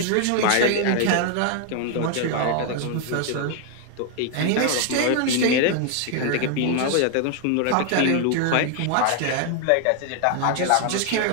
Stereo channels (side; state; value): both; different; correlation 0.00